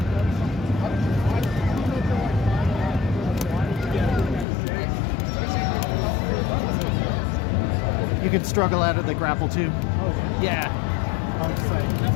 You can struggle out of the grapple too. Oh, yeah. I'm excited.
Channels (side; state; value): right; drops out; at 4.5 s